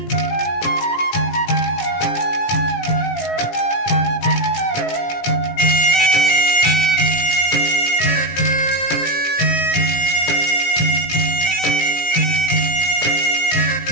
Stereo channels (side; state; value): right; late; 17 ms